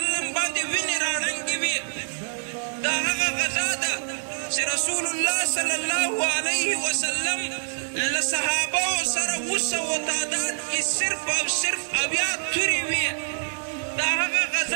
باندې وینې راړنګې وي دا هغه غزا ده چې رسول الله صلی الله علیه وسلم له صحابهو سره 200 تعداد کې صرف او صرف اویا تورې وي دا هغه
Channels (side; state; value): left; silent; digital silence